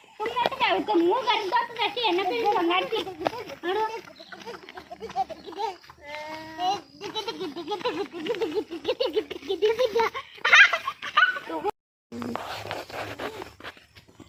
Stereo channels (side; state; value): both; identical; correlation 1.00